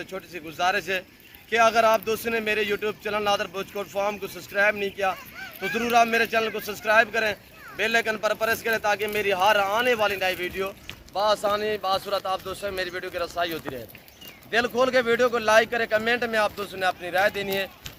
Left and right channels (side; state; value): both; identical; correlation 1.00